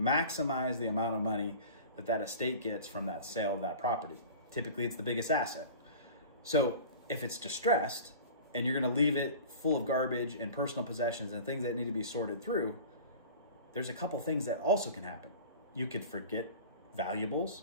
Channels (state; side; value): inverted; both; correlation -0.39